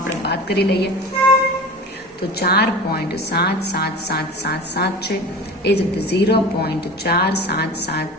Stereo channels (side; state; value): both; normal; correlation 0.35